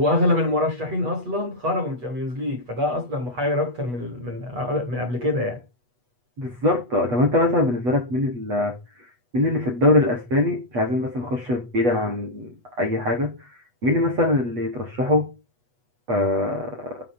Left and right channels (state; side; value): late; left; 8.2 ms